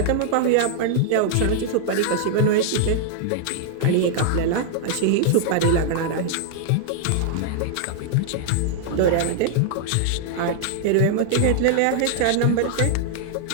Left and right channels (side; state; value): both; different; correlation -0.01